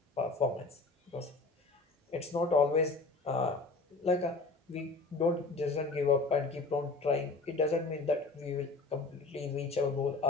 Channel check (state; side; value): quieter; right; 3.6 dB